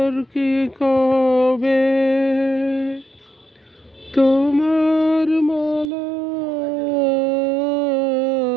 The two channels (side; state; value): left; drops out; at 5.9 s